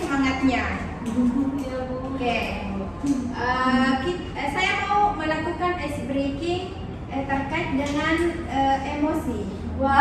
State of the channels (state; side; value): identical; both; correlation 1.00